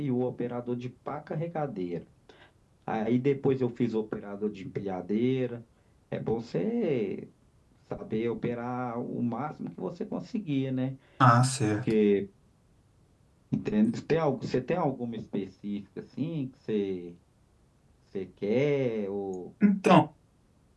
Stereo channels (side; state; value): both; identical; correlation 1.00